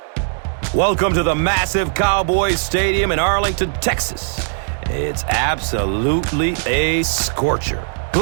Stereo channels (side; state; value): left; silent; digital silence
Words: Welcome to the massive Cowboys Stadium in Arlington, Texas. It's absolutely a scorcher.